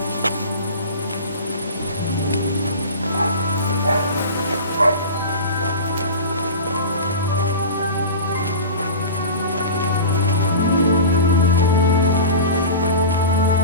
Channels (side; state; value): both; inverted; correlation -0.32